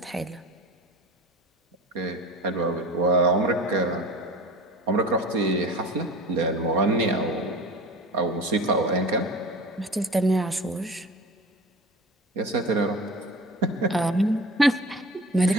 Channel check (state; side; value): normal; both; correlation 0.36